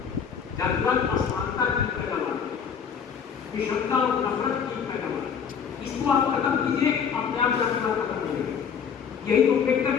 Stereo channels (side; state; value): right; quieter; 7.1 dB